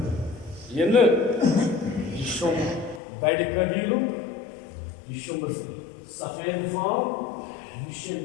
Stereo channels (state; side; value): drops out; right; at 3.0 s